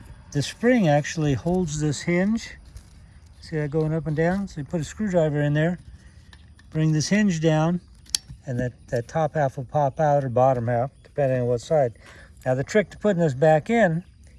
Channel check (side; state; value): both; identical; correlation 1.00